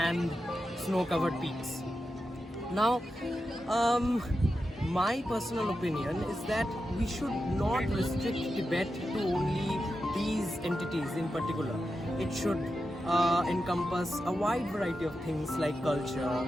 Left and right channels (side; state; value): both; normal; correlation 0.90